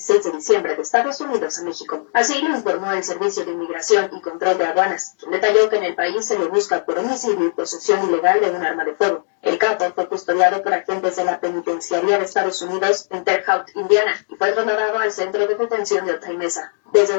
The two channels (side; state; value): right; silent; digital silence